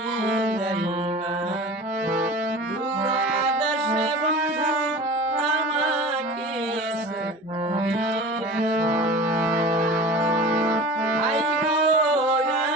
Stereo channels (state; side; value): normal; both; correlation 0.37